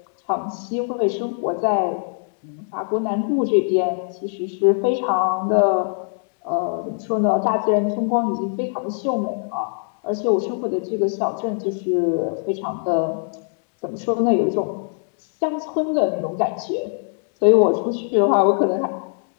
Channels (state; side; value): silent; right; 59 dB below the other